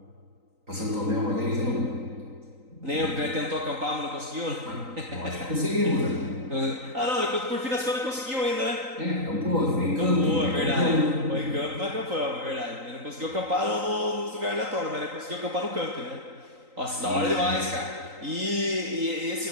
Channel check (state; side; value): late; left; 3.9 ms